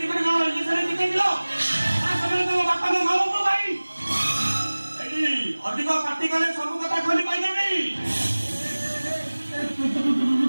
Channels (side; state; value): both; inverted; correlation -1.00